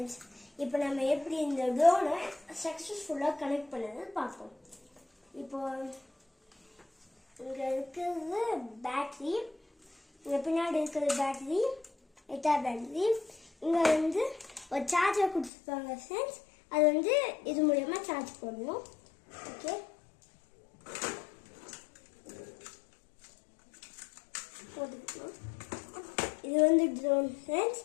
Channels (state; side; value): drops out; right; at 15.5 s